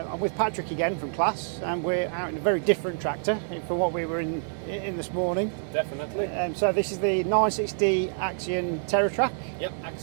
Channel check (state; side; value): silent; left; digital silence